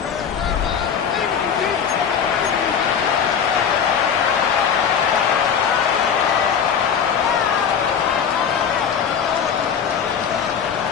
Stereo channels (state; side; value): quieter; right; 7.4 dB